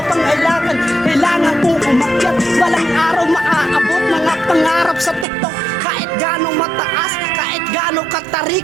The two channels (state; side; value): drops out; left; at 5.2 s